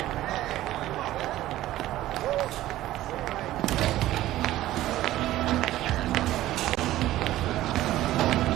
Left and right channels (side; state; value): left; quieter; 14.9 dB